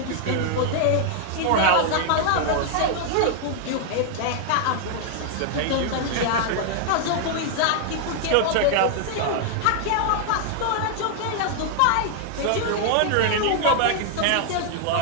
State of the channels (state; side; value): different; both; correlation 0.00